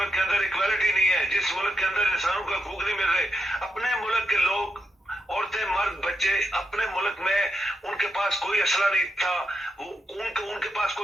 के अंदर इक्वालिटी नहीं है, जिस मुल्क के अंदर इंसानों का हकूक नहीं मिल रहे, अपने मुल्क के लोग, औरतें, मर्द, बच्चे, अपने मुल्क में उनके पास कोई असला नहीं था, उनके पास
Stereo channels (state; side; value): normal; both; correlation 0.84